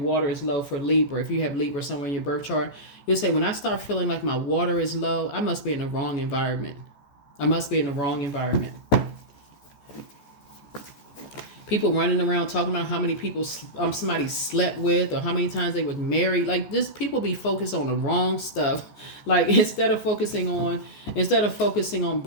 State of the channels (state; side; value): late; right; 14 ms